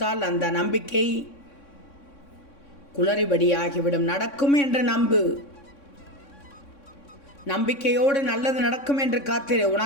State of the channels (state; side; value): late; right; 3.6 ms